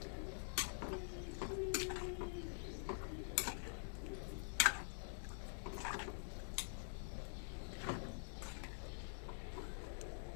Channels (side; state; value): right; silent; digital silence